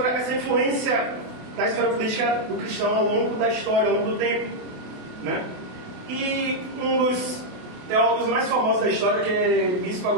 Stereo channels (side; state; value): left; late; 28 ms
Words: essa influência da história política do cristão ao longo da história, ao longo do tempo, né? E um dos teólogos mais famosos da história, que é Bispo